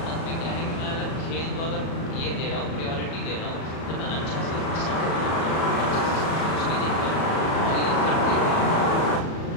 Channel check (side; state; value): right; late; 37 ms